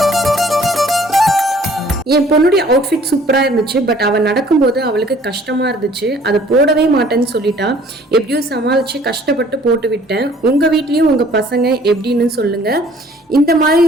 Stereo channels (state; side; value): normal; both; correlation 0.56